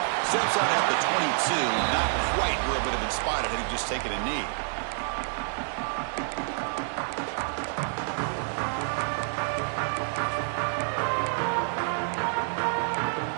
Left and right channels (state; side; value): silent; left; 59 dB below the other